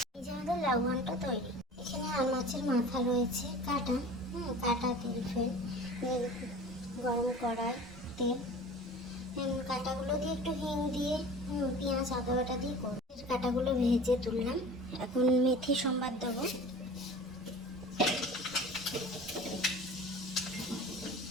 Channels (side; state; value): both; normal; correlation 0.40